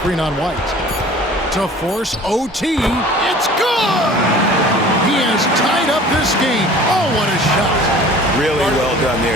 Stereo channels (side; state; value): both; normal; correlation 0.46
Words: on White. To force OT. It's good! He has tied up this game. Oh, what a shot. Really well done there.